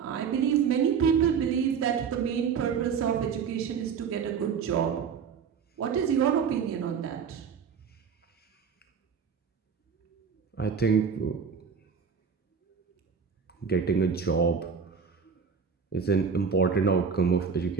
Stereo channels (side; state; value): left; quieter; 6.5 dB